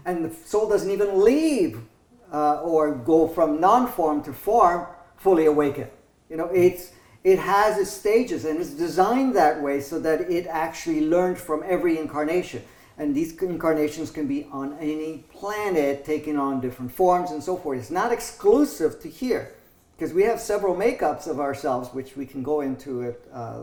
And the soul doesn't even leave or go from non-form to form fully awakened. You know, it has its stages, and it's designed that way so that it actually learned from every incarnation. And these incarnations can be on any planet, taking on different forms and so forth. It's not exclusive to here, because we have several makeups of ourselves, which we can go into it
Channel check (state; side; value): identical; both; correlation 1.00